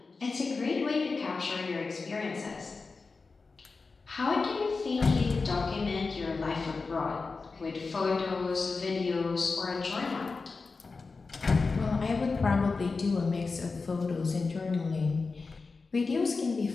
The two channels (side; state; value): right; quieter; 4.2 dB